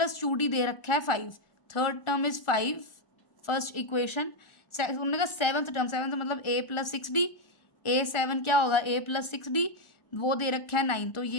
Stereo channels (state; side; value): late; right; 1.4 ms